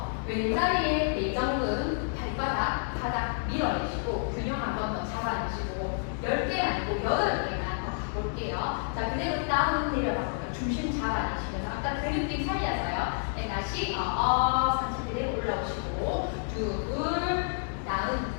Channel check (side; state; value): right; silent; digital silence